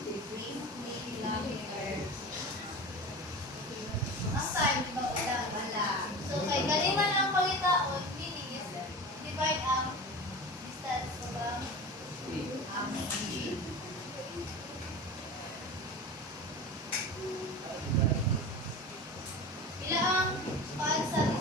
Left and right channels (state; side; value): normal; both; correlation 0.32